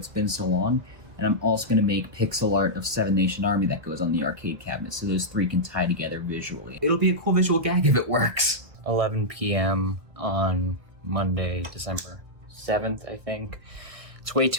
Been So Long, and I'm also going to make pixel art of Seven Nation Army that goes on the arcade cabinet, so those three can tie together visually. It'll be a cool visual gag if it works. 11 p.m. on Monday, December 7th, I think. It's way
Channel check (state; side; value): late; left; 1.7 ms